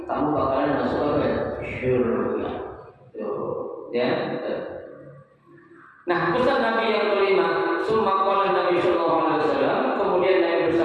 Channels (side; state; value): both; identical; correlation 1.00